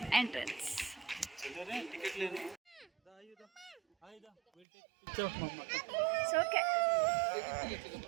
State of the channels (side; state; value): left; drops out; at 4.7 s